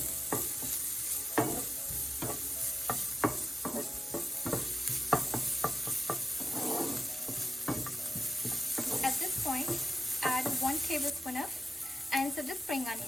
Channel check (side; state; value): both; normal; correlation 0.95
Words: At this point, add 1 tablespoon of ends of the spring